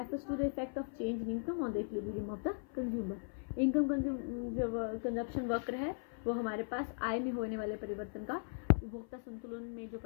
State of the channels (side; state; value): right; silent; 52 dB below the other